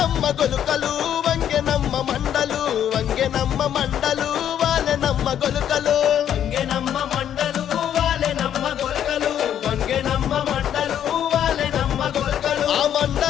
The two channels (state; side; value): quieter; right; 10.0 dB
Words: గొలుకలు వంగెనమ్మ మండలు వాళ్ళనమ్మ గొలుకలు వంగెనమ్మ మండలు వాళ్ళనమ్మ గొలకలు వంగెనమ్మ మండలు వాళ్ళనమ్మ గొలకలు ఆ